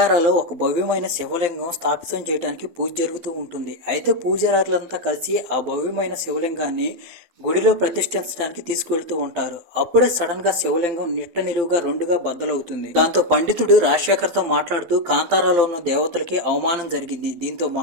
ఒక భవ్యమైన శివలింగం స్థాపితం చేయడానికి పూజ జరుగుతూ ఉంటుంది. అయితే పూజారులంతా కలిసి ఆ భవ్యమైన శివలింగాన్ని గుడిలో ప్రతిష్ఠించడానికి తీసుకువెళ్తూ ఉంటారు. అప్పుడే సడన్ గా శివలింగం నిట్ట నిలువుగా రెండుగా బద్దలవుతుంది. దాంతో పండితుడు రాజశేఖర్ తో మాట్లాడుతూ కాంతారాలో ఉన్న దేవతలకి అవమానం జరిగింది. దీంతో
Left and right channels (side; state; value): left; late; 12 ms